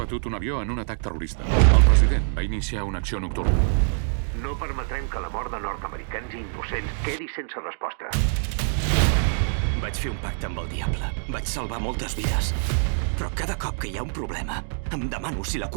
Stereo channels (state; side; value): silent; left; digital silence